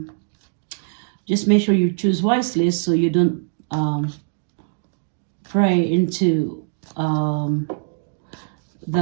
Just make sure you choose wisely so you don't pray into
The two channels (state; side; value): silent; left; digital silence